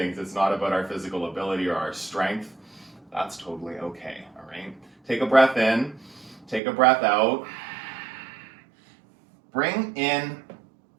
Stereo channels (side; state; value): left; drops out; at 6.6 s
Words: It's not about our physical ability or our strength. That's totally okay, all right? Take a breath in. Take a breath out. Bring in